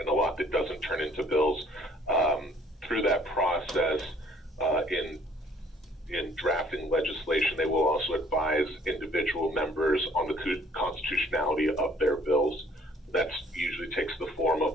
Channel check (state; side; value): normal; both; correlation 0.59